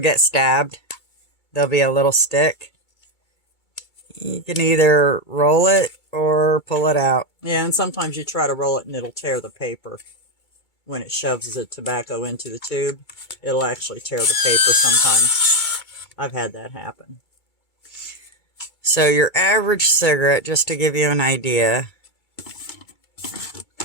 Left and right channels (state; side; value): late; right; 2.3 ms